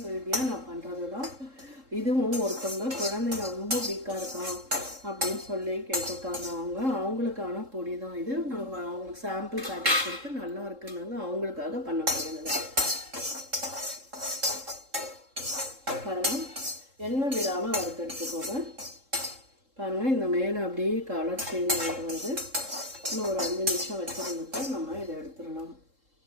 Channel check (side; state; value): left; late; 3.7 ms